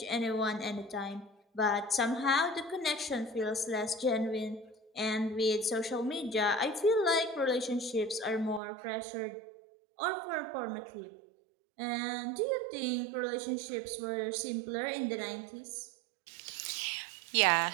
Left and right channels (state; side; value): drops out; left; at 8.6 s